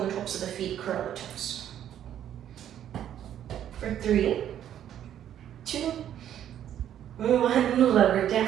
tops of the feet, curl the toes. For 3, 2, 1, lower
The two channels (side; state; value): left; quieter; 10.6 dB